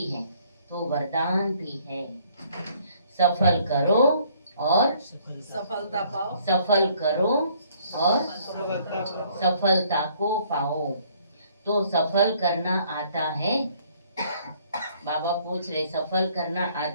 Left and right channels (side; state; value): both; inverted; correlation -0.62